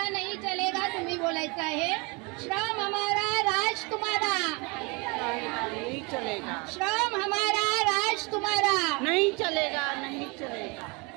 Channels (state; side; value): quieter; left; 28.9 dB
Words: नहीं चलेगा. तुम्ही बोलायचं आहे श्रम हमारा राज तुम्हारा. नहीं चलेगा. श्रम हमारा राज तुम्हारा. नहीं चलेगा. नहीं चलेगा.